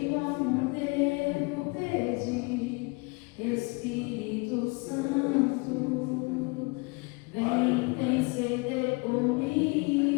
como devo pedir. Espírito Santo, vem interceder por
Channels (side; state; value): right; quieter; 28.9 dB